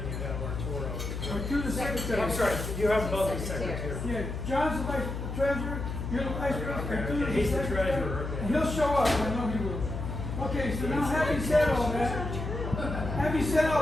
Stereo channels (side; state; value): left; noise; hum, 5 dB below the sound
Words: you have Arturo. Or to the secretary. I'm sorry, you have both the secretary. Yeah, John's the vice treasurer. You're the vice president. Okay, Tu's he's the secretary. treasurer, okay. And he'll show up. I know he will. Okay, so now having said all that,